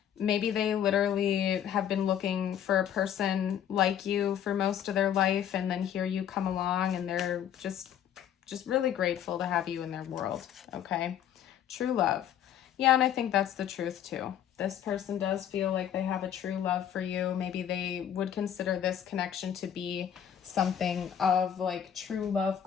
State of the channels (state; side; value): quieter; right; 9.7 dB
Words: Maybe they literally have been looking for a person like you for most of their life, and then here you come along and they're just really grateful to have you in their world, okay? True love. Yeah, and I think that's the truth too. This person does feel like they have a true love for you. Maybe they would consider this connection to be something of like true love